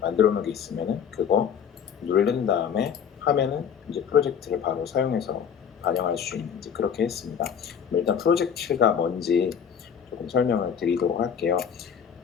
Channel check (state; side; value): quieter; right; 7.7 dB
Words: 놓은 게 있으면은 그거 누른 다음에 하면은 이제 프로젝트를 바로 사용해서 반영할 수 있는 이제 그렇게 했습니다. 일단 프로젝트가 뭔지 조금 설명을 드리도록 할게요.